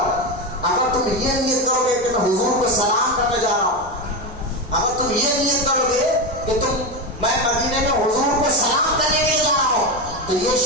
اگر تم یہ نیت کرو گے کہ میں حضور کو سلام کرنے جا رہا ہوں، اگر تم یہ نیت کرو گے کہ میں مدینے میں حضور کو سلام کرنے کے لیے جا رہا ہوں تو یہ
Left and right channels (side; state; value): both; normal; correlation 0.16